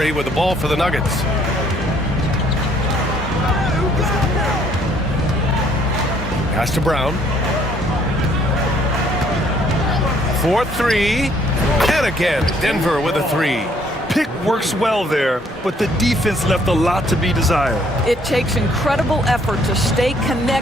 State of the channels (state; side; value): normal; both; correlation 0.64